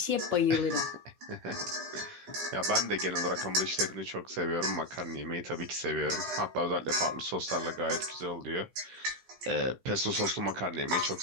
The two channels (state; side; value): late; left; 16 ms